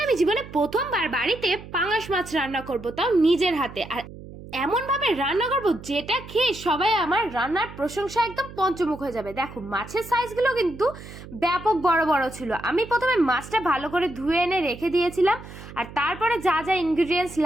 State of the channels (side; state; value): right; noise; hum, 15 dB below the sound